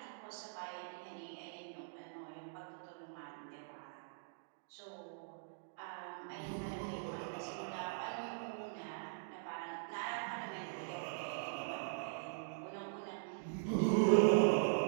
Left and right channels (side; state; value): left; silent; digital silence